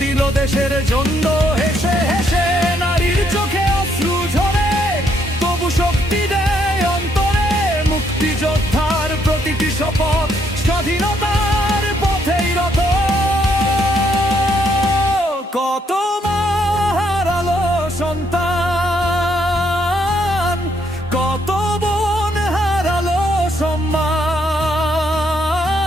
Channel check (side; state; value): both; normal; correlation 0.72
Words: দিল দেশের জন্য হেসে হেসে নারীর চোখে অশ্রু ঝরে তবু শক্তি দেয় অন্তরে মুক্তিযোদ্ধার প্রতিটি শপথ স্বাধীনতার পথেই রত কত মা হারালো সন্তান কত বোন হারালো সম্মান